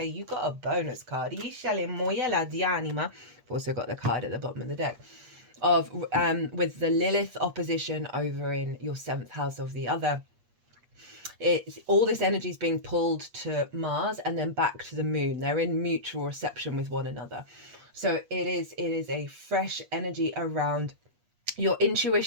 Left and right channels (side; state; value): left; late; 8.4 ms